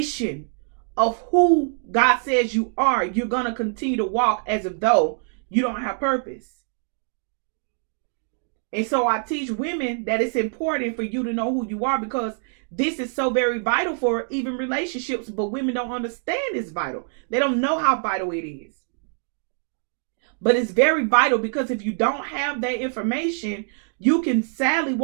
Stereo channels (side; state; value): left; silent; 57 dB below the other